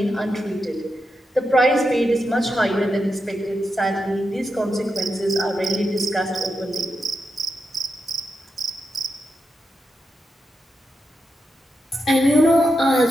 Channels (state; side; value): normal; both; correlation 0.87